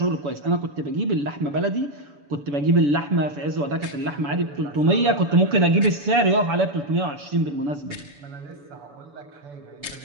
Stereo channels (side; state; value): left; late; 7.0 ms